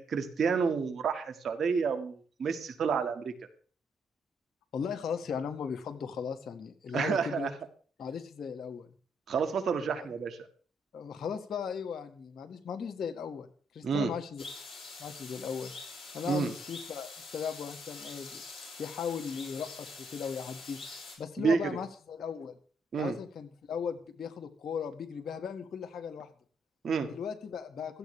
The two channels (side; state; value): both; normal; correlation 0.73